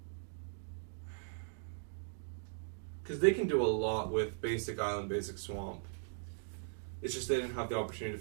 Because they can do a lot with basic island, basic swamp. It's just they didn't have the opportunity to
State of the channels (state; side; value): silent; left; digital silence